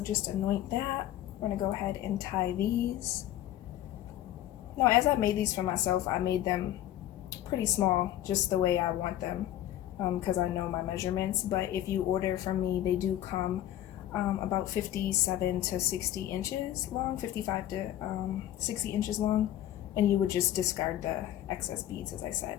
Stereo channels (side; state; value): right; quieter; 12.7 dB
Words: just anoint that. We're gonna go ahead and tie these. No, as I made these for myself, I made them pretty small, just the way I want them, because I know my measurements. But if you order from me, they do come about 57 to 60 inches long, 55 to 60 inches long, and you would just discard the excess beads, as I